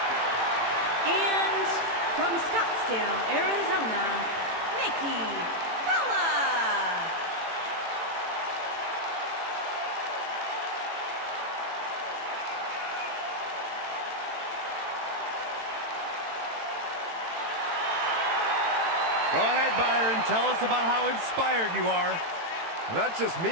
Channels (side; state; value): left; late; 18 ms